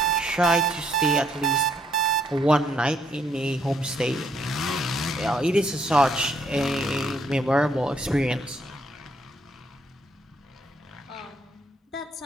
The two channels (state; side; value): normal; both; correlation 0.71